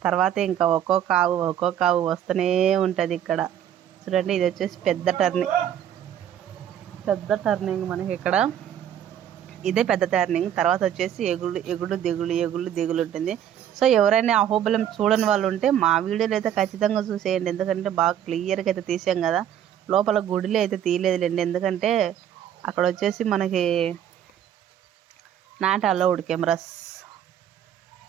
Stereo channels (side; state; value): left; quieter; 10.2 dB